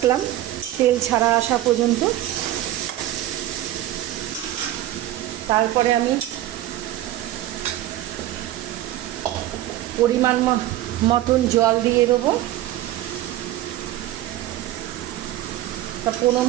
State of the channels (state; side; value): quieter; left; 14.3 dB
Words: তেল ছাড়া আসা পর্যন্ত। তারপরে আমি পরিমাণ মতন জল দিয়ে দেবো। 15